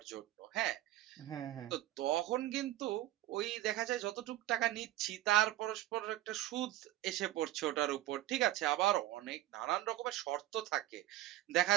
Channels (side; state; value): left; quieter; 14.6 dB